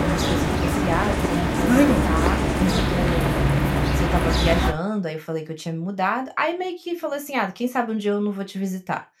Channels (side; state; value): both; identical; correlation 1.00